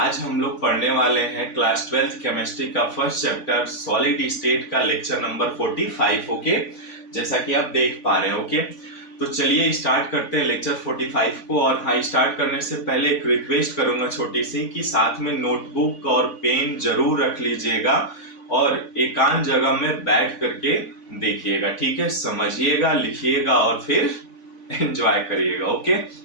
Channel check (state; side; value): late; right; 3.5 ms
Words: हम लोग पढ़ने वाले हैं क्लास 12th केमिस्ट्री का फर्स्ट चैप्टर सॉलिड स्टेट का लेक्चर नंबर 45। ओके, जैसा कि आप देख पा रहे हैं। ओके, तो चलिए स्टार्ट करते हैं लेक्चर 45 को। और हाँ, स्टार्ट करने से पहले एक रिक्वेस्ट करूंगा छोटी सी कि साथ में नोटबुक और पेन जरूर रख लीजिएगा और एकांत जगह में बैठ करके देखिएगा। ठीक है, समझिएगा, लिखिएगा और फिर एंजॉय करिएगा। ओके,